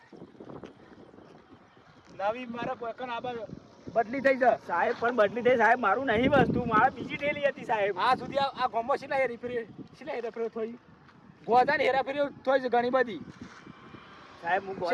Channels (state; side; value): identical; both; correlation 1.00